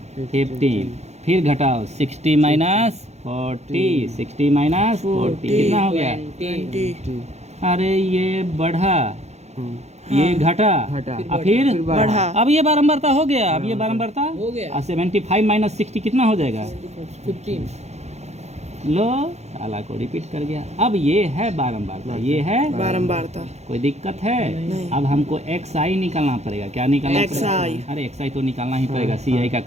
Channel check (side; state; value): left; late; 0.32 ms